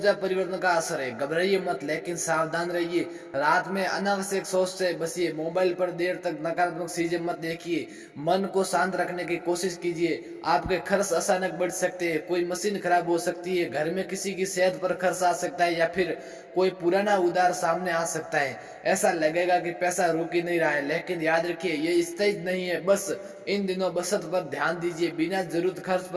परिवर्तन का असर है। घबराइए मत, लेकिन सावधान रहिए। रात में अनावश्यक सोच से बचिए, मोबाइल पर देर तक नकारात्मक चीजें मत देखिए, मन को शांत रखने की कोशिश कीजिए। आपके खर्च अचानक बढ़ सकते हैं, कोई मशीन खराब हो सकती है, घर में किसी की सेहत पर खर्च आ सकता है, या फिर कोई पुराना उधार सामने आ सकता है। ऐसा लगेगा कि पैसा रुक ही नहीं रहा है, लेकिन याद रखिए ये स्थायी नहीं है। बस इन दिनों बचत पर ध्यान दीजिए, बिना जरूरत खर्च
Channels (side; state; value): both; identical; correlation 1.00